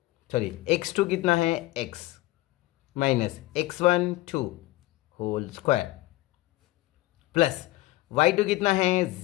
सॉरी x2 कितना है x minus x1 2 whole square plus y2 कितना है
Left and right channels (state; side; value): quieter; right; 18.3 dB